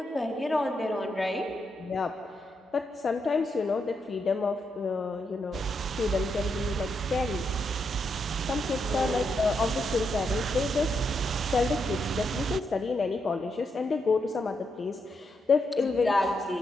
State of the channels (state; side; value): normal; both; correlation 0.81